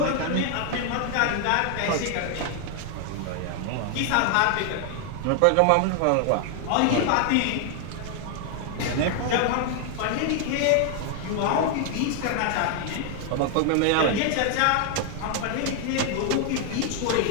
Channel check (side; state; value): both; different; correlation 0.00